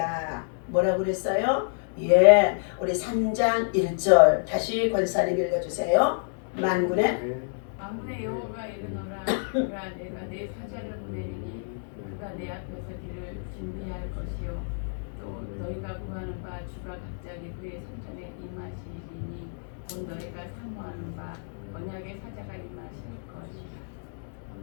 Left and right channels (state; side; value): silent; right; digital silence